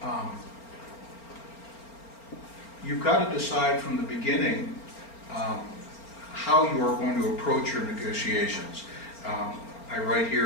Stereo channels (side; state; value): right; late; 4.4 ms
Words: Um, You've got to decide from the beginning how you are going to approach your negotiations. I write